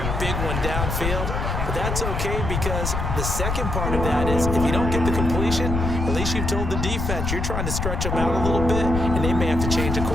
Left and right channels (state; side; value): noise; left; rumble, 2 dB below the sound